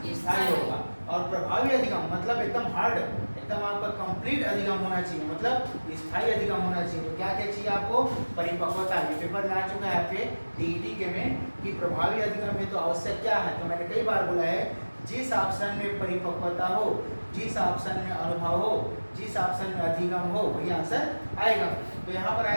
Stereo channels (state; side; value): inverted; both; correlation -1.00